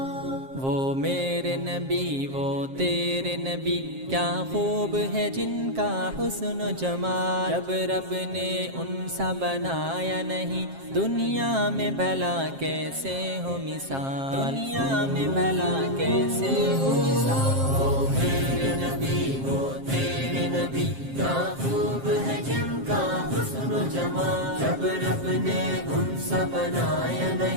وہ میرے نبی وہ تیرے نبی کیا خوب ہے جن کا حسن و جمال جب رب نے ان سا بنایا نہیں دنیا میں بھلا کیسے ہو مثال دنیا میں بھلا کیسے ہو مثال وہ میرے نبی وہ تیرے نبی کیا خوب ہے جن کا حسن و جمال جب رب نے ان سا بنایا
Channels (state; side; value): late; left; 7.5 ms